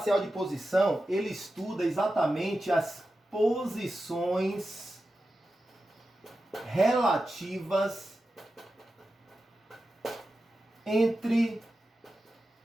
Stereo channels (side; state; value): both; normal; correlation 0.92